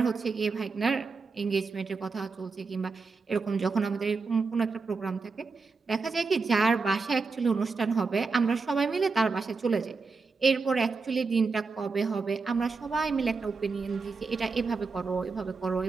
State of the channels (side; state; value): left; quieter; 4.4 dB